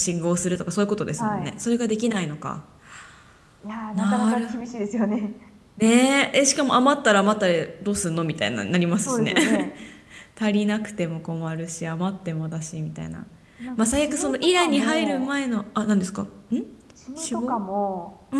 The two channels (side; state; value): both; identical; correlation 1.00